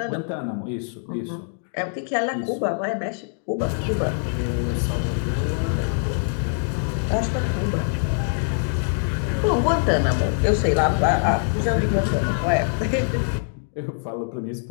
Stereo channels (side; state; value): right; silent; digital silence